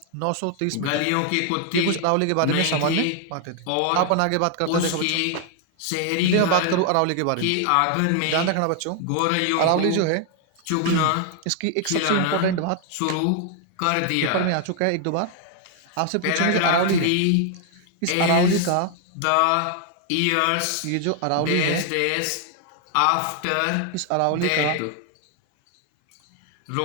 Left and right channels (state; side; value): different; both; correlation 0.00